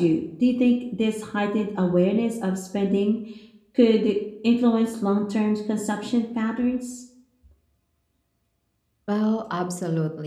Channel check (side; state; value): both; identical; correlation 1.00